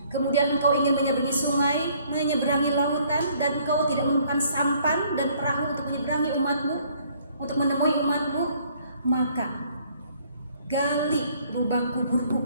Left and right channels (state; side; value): inverted; both; correlation -0.62